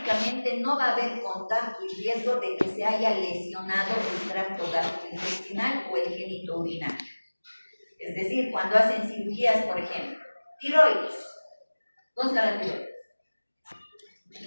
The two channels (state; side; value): inverted; both; correlation -1.00